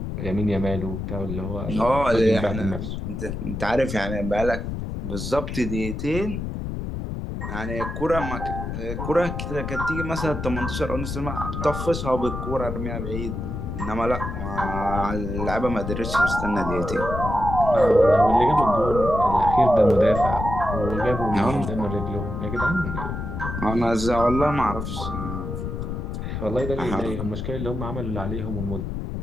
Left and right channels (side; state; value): left; noise; rumble, 5 dB below the sound